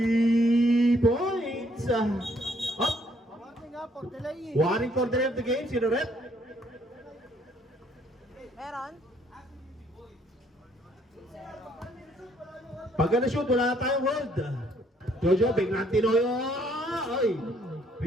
points. Up. Warning for delay of the game. Sino rep? Meron? Pag na-shoot, wala na tayong hold. Jojo, biglang tinoyo. Oy.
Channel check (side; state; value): both; normal; correlation 0.66